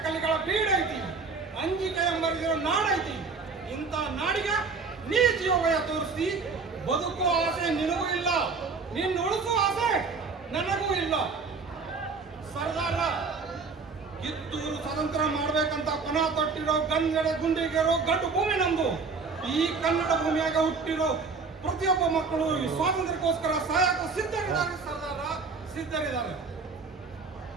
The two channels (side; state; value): left; quieter; 4.6 dB